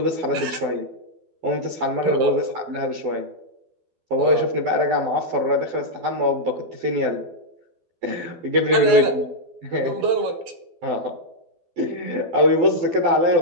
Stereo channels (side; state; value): left; late; 12 ms